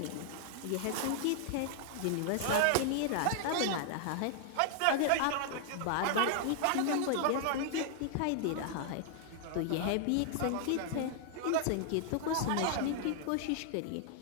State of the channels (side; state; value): both; different; correlation 0.00